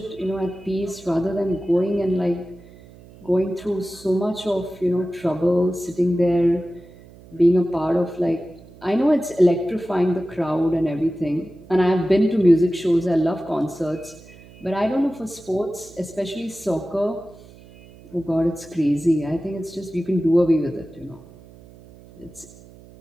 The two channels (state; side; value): noise; right; hum, 22 dB below the sound